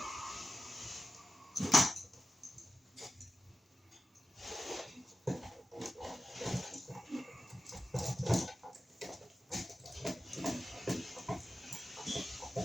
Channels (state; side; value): normal; both; correlation 0.93